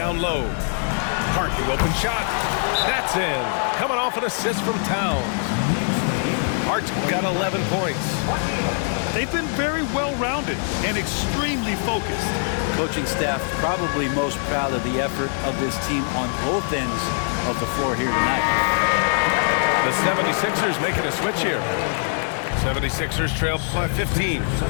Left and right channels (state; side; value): silent; right; 58 dB below the other